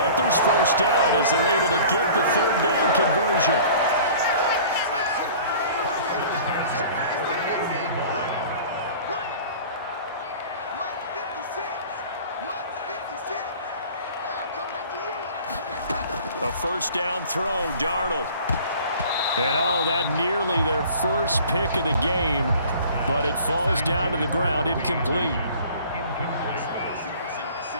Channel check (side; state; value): both; inverted; correlation -0.46